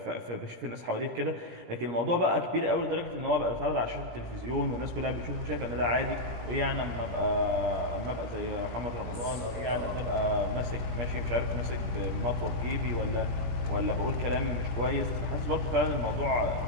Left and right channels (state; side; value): late; left; 17 ms